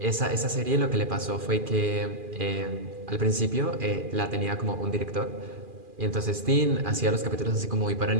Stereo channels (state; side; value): late; left; 2.4 ms